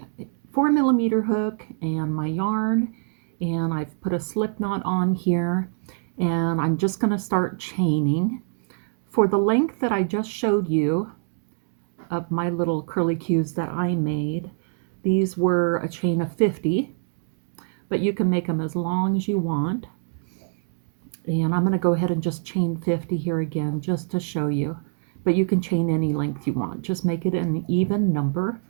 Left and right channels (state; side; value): silent; left; digital silence